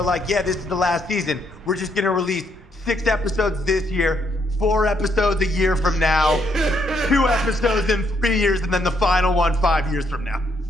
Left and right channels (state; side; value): normal; both; correlation 0.73